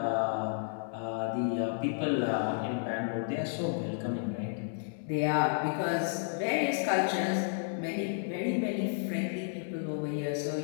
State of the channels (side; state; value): right; silent; 56 dB below the other